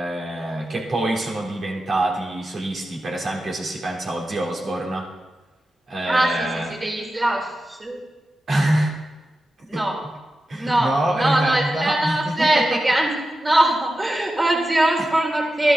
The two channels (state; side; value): normal; both; correlation 0.92